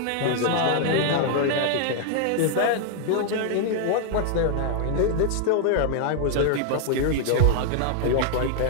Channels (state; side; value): different; both; correlation 0.00